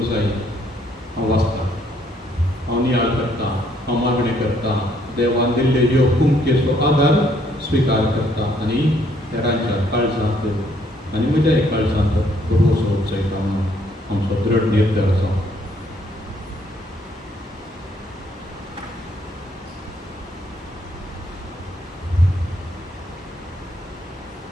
जाय. हांव वाचतां, हांव नियाळ करतां, हांव मागणें करतां, देवान दिल्ले ह्यो कुमकेचो आदार स्विकार करता आनी हेरांच्या काळजांत आनी म्हज्याय काळजांत भरवोसो उचयता म्हणून आमचो दृढ निर्धार आसा.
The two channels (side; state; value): both; normal; correlation 0.67